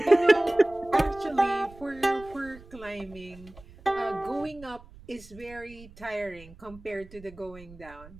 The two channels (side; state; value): right; noise; rumble, 20 dB below the sound